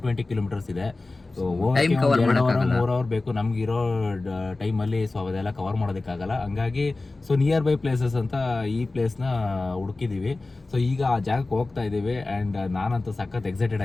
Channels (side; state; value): right; quieter; 3.3 dB